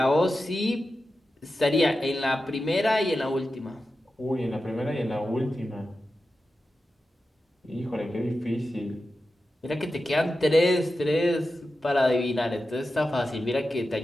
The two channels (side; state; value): both; normal; correlation 0.92